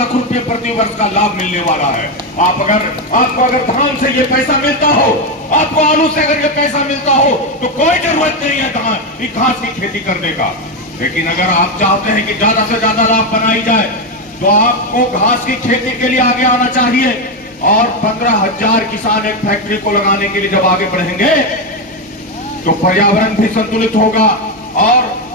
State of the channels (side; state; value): both; normal; correlation 0.09